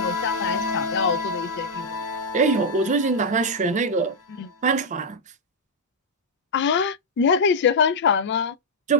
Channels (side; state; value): both; normal; correlation -0.06